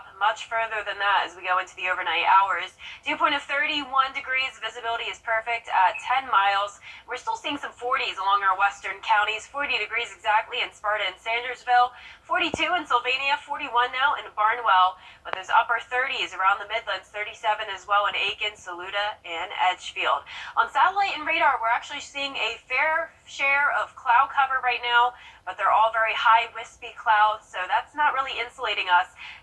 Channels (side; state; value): both; identical; correlation 1.00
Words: much further than that as we go into the overnight hours. Dew point of 31 degrees, visibility is perfect at 10 miles. We're still seeing some 40s along our western counties, 40 degrees exactly in Sparta and Sandersville, 42 in Sylvania, 41 now in Barnwell, but those upper 30s around the Midlands, 37 as well in Aiken, Saluda, and Edgefield. On satellite and radar, we're actually seeing a fair share of cloud cover right now, but they're all very high, wispy clouds, so that's not really insulating us.